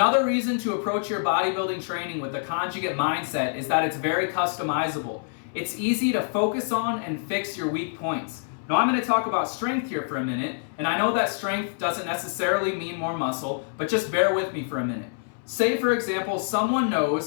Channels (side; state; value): right; silent; 61 dB below the other